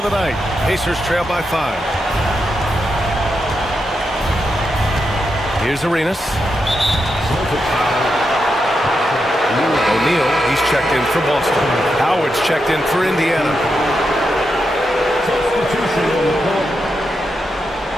the night. Pacers trail by 5. Here's Arenas. O'Neal, he's checked in for Boston. Howard's checked in for Indiana.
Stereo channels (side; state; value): both; normal; correlation 0.85